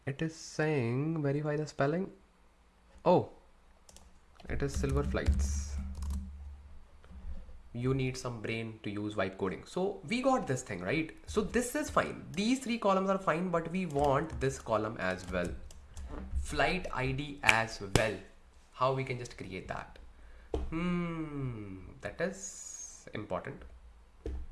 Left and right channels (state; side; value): identical; both; correlation 1.00